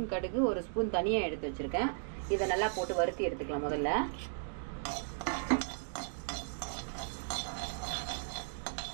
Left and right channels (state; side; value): silent; left; digital silence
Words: கடுகு, 1 ஸ்பூன் தனியாக எடுத்து வச்சுருக்கேன். இதை நல்லா போட்டு வறுத்தி எடுத்துக்கலாம் முதல்ல.